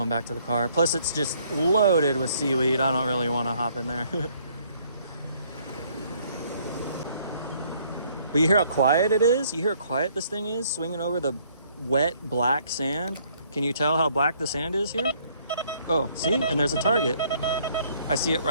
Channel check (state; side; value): inverted; both; correlation -0.64